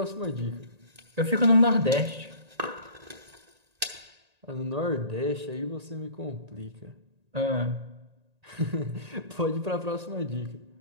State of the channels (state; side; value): late; left; 1.8 ms